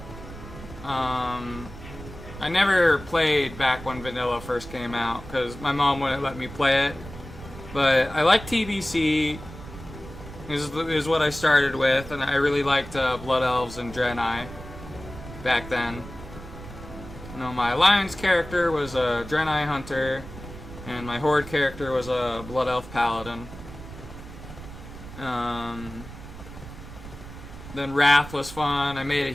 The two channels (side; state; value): right; noise; rumble, 14 dB below the sound